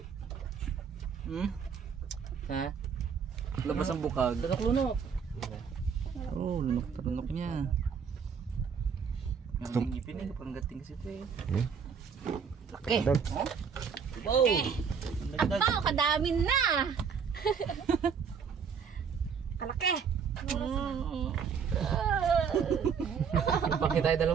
Ha? Labas ang bukag. Lunok-lunok. Oh, lunok-lunok niya. Ang ngipin eh, parang gating kasi ito eh. Laki! Dag. Wow! Ito, kadami na. Kalaki. Bakit tayo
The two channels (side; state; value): left; quieter; 6.5 dB